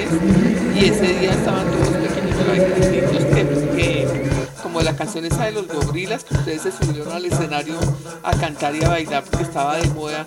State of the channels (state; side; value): identical; both; correlation 1.00